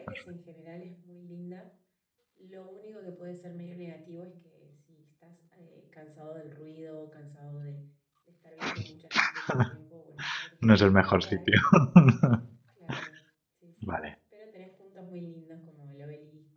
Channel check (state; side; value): identical; both; correlation 1.00